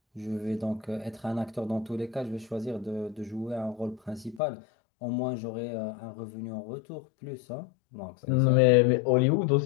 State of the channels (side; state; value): right; drops out; at 4.4 s